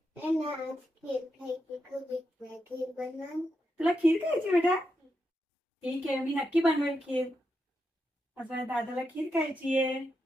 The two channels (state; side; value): normal; both; correlation 0.85